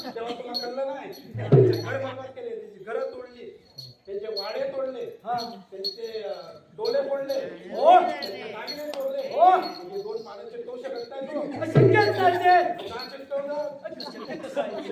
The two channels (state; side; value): identical; both; correlation 1.00